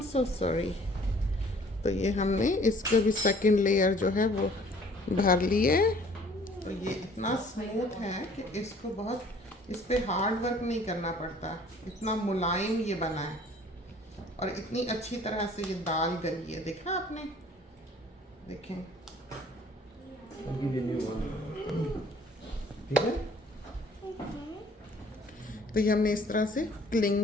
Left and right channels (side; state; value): both; normal; correlation 0.55